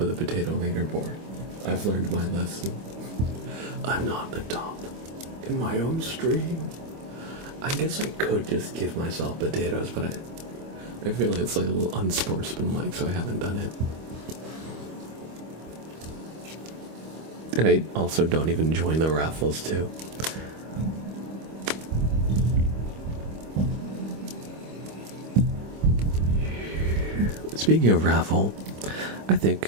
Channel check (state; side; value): late; left; 25 ms